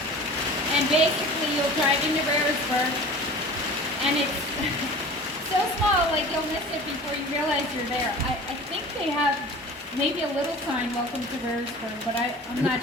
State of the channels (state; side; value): normal; both; correlation 0.40